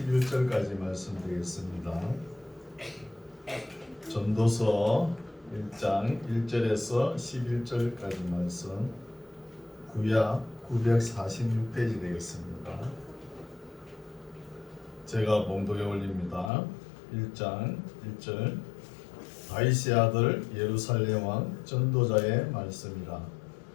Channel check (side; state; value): right; drops out; at 16.5 s